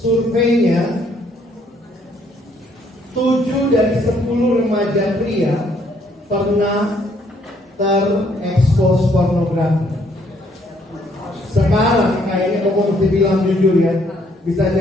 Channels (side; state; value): both; normal; correlation 0.67